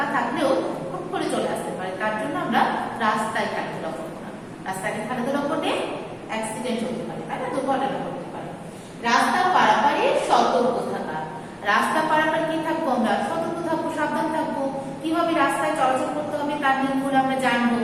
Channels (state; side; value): identical; both; correlation 1.00